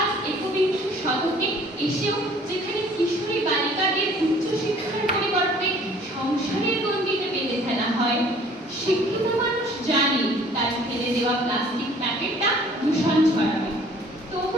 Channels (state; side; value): normal; both; correlation 0.54